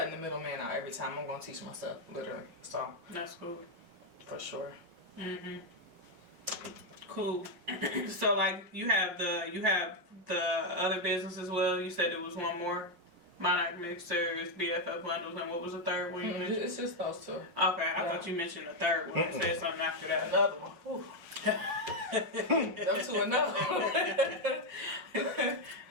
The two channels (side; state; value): left; late; 5.8 ms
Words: the middleman out every time. I'm gonna teach myself literally. So That's cool. for sure. Cool. So like you have the other business as well. You said there was one more. Monarch Mixers, BFF Bundles, and what was the third one you mentioned? It's just those two. Okay, I thought you mentioned the third one and said something after that. Another one. Them two another one.